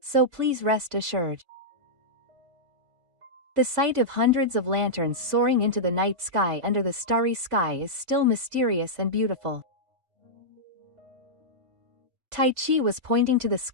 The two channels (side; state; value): left; late; 3.5 ms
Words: so please rest assured. The sight of hundreds of lanterns soaring into the night sky under the starry sky is still mysterious and beautiful. Taichi was pointing to the